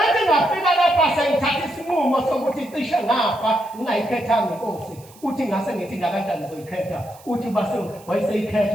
ethi ngafika lapha sengithatha isinqumo sokuthi cishe ngafa ngingayikhethanga inkosi uthi ngase ngithi kanjani ngizoyikhetha uthi base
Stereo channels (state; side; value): noise; right; hiss, 24 dB below the sound